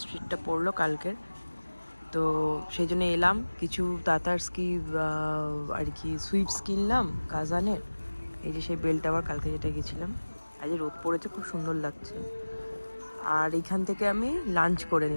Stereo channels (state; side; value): inverted; both; correlation -1.00